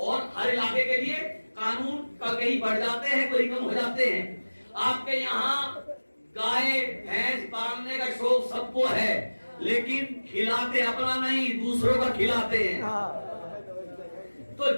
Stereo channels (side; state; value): both; inverted; correlation -1.00